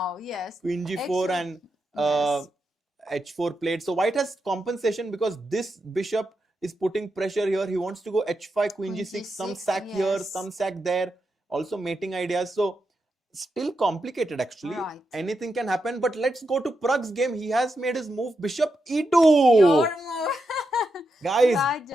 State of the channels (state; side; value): normal; both; correlation 0.86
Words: Yes. Queen g4 and Yes. h4 played. So white has compensation because this bishop is putting pressure here. He wants to go h5, queen Queen g6, some g6, sack here, yes. some sack there. Also mating ideas. So still complicated actually. Right. Anything can happen. But let's go to Pragg's game. He has made his move bishop e2. Your move. Guys,